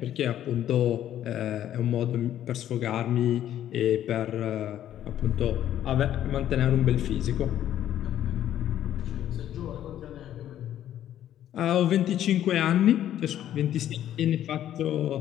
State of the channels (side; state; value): right; quieter; 11.5 dB